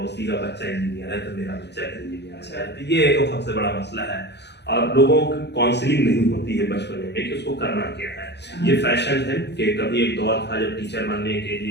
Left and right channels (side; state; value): right; late; 0.50 ms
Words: का बच्चा इंजीनियर है तो मेरा बच्चा इंजीनियर है, तो ये एक सबसे बड़ा मसला है। और लोगों की काउंसलिंग नहीं होती है बचपन में कि उसको करना क्या है। ये फैशन है कि कभी एक दौर था जब टीचर बनने के